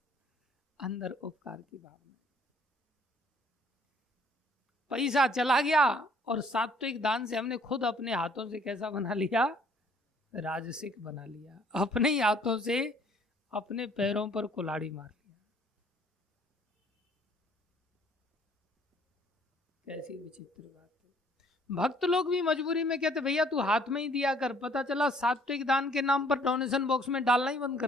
अंदर उपकार की भावना। पैसा चला गया और सात्विक दान से हमने खुद अपने हाथों से कैसा बना लिया, राजसिक बना लिया। अपने ही हाथों से अपने पैरों पर कुल्हाड़ी मार लिया। कैसी विचित्र बात है। भक्त लोग भी मजबूरी में कहते भैया तू हाथ में ही दिया कर, पता चला सात्विक दान के नाम पर डोनेशन बॉक्स में डालना ही बंद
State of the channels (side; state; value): both; normal; correlation 0.60